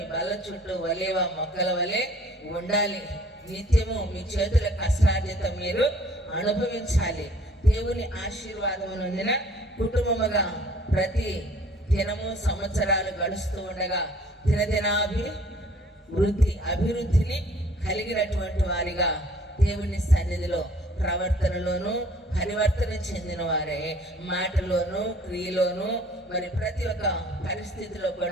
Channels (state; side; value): normal; both; correlation 0.55